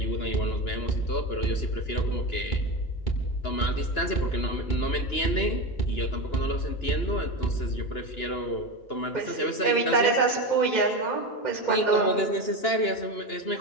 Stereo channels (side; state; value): right; late; 2.9 ms